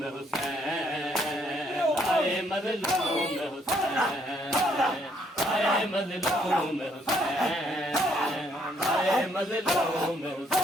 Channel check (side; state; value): both; normal; correlation 0.69